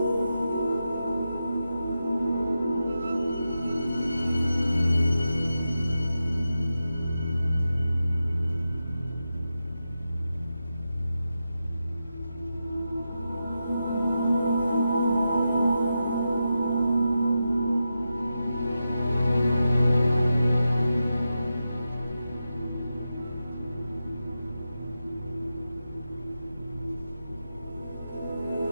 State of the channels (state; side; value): inverted; both; correlation -0.89